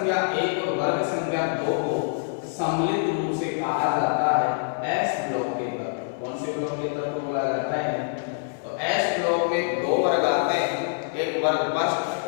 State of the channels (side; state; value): right; silent; 61 dB below the other